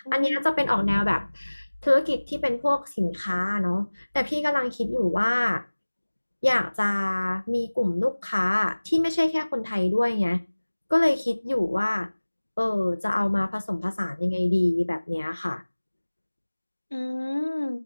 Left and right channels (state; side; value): inverted; both; correlation -1.00